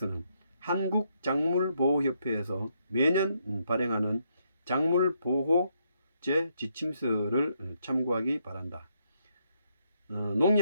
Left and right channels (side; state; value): both; inverted; correlation -0.76